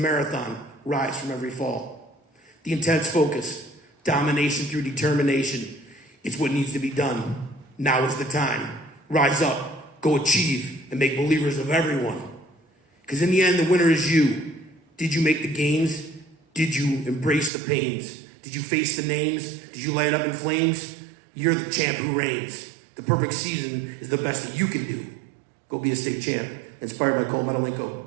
rise from every fall. The intense focus, domination through determination, it's what needs to be done. Now is the time. Rise up, go achieve, and make believers of everyone. Because in the end, the winner is you. Did you make the gains? Did you embrace the pains? Did you face the names? Did you light up in flames? You're the champ who reigns. The perfect season is the best that you can do. Go be a state champ. Inspired by Koulentes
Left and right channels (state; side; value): drops out; left; at 17.5 s